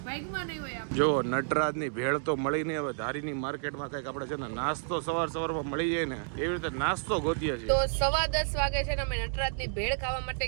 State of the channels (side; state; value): left; silent; digital silence